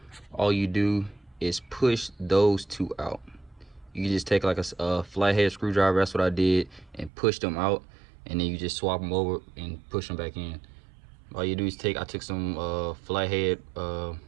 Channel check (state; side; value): drops out; left; at 7.1 s